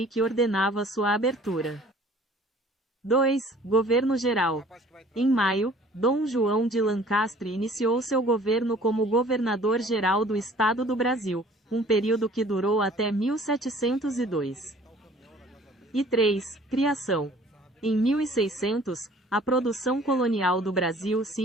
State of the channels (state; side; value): normal; both; correlation 0.52